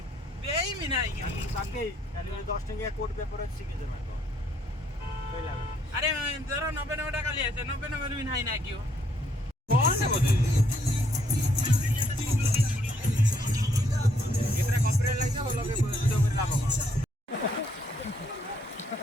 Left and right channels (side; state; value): both; normal; correlation 0.70